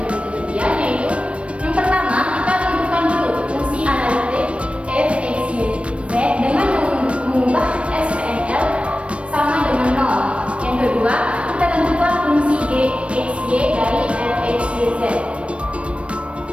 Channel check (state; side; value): late; left; 0.061 ms